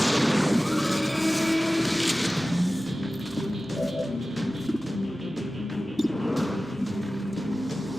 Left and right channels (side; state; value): both; normal; correlation 0.96